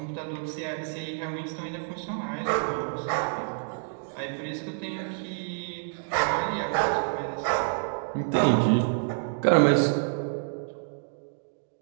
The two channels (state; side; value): silent; left; digital silence